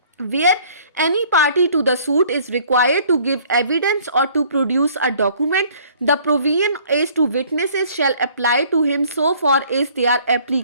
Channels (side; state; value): both; inverted; correlation -0.56